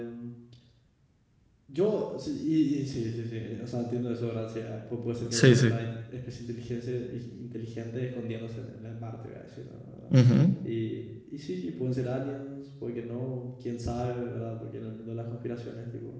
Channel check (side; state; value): both; identical; correlation 1.00